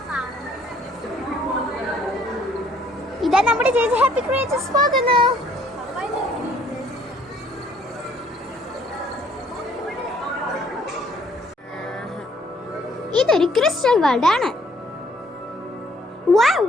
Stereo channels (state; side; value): normal; both; correlation 0.63